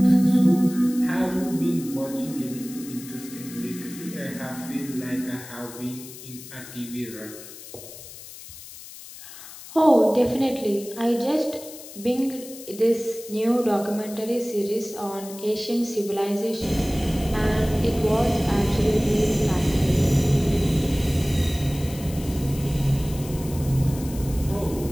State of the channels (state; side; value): noise; left; hiss, 15 dB below the sound